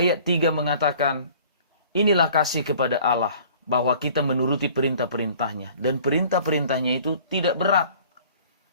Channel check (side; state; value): both; inverted; correlation -0.50